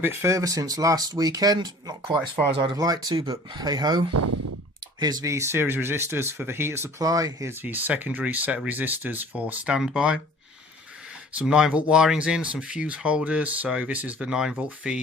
bit further since last weekend. Not quite as far as I'd have liked to, but hey ho. Here's the series resistors for the heater supply. Here's the secondary set of resistors for standby. Some 9-volt wirings in, some fuse holders. So this is the 9-volt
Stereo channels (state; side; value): normal; both; correlation 0.48